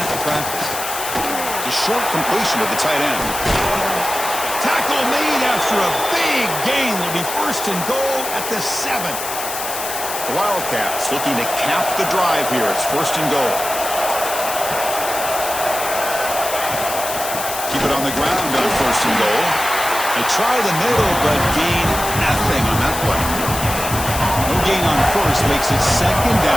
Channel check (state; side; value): noise; left; hiss, 6 dB below the sound